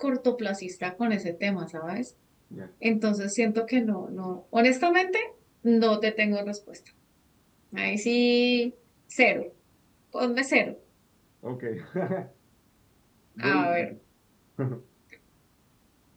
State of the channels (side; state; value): both; identical; correlation 1.00